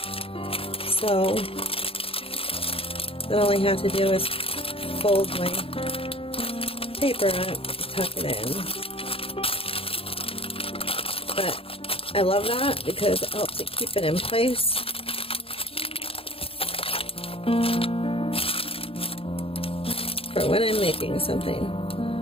So then all I have to do is fold my paper up, tuck it in. But I love that because it helps it keep it in place. For when I'm making something.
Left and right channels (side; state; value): right; late; 0.27 ms